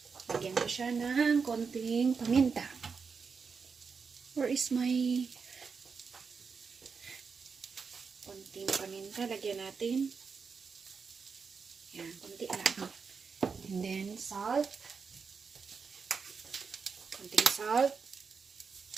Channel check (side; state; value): left; quieter; 5.4 dB